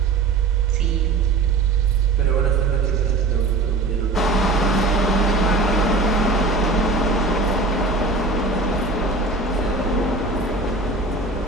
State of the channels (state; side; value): quieter; left; 3.5 dB